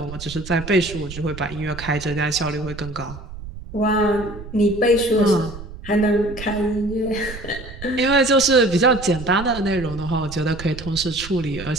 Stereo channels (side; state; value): right; noise; rumble, 13 dB below the sound